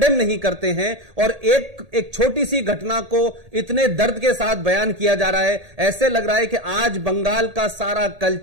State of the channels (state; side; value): late; left; 1.8 ms